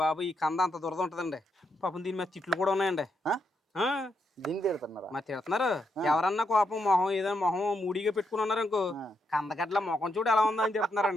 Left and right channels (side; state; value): both; normal; correlation 0.80